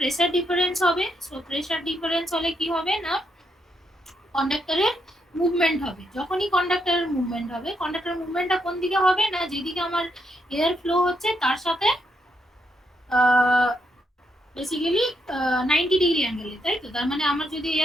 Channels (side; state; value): both; normal; correlation 0.78